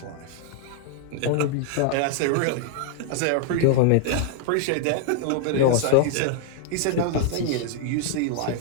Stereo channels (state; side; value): different; both; correlation -0.01